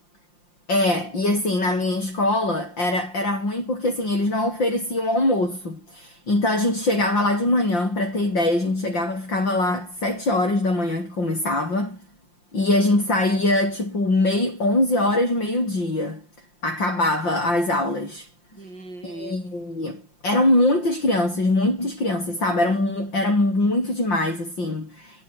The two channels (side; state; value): right; late; 5.7 ms